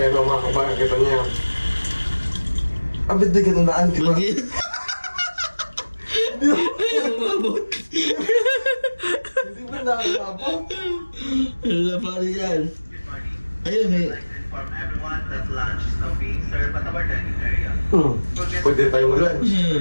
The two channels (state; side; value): inverted; both; correlation -1.00